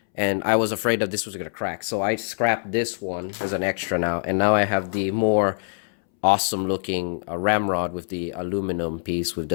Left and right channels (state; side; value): silent; right; 62 dB below the other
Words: and I was afraid that this was gonna crack. So I scrapped this one as an extra now, and now I have the more awesome looking ramrod with the aluminum piece with